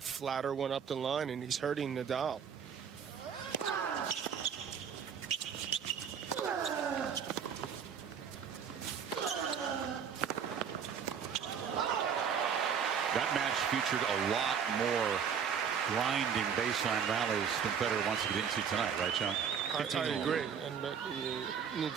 flatter one up the line, and he's hurting Nadal. That match featured a lot more grinding baseline rallies than Federer wants to get into tonight, right, John? I agree, and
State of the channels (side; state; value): left; quieter; 7.3 dB